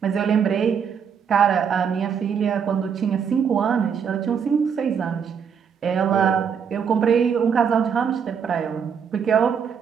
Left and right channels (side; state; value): left; quieter; 7.1 dB